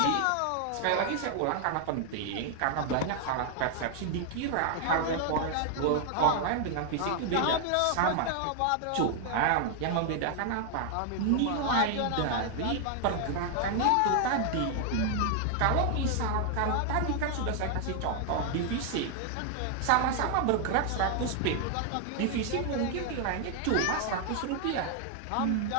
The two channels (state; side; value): different; both; correlation 0.00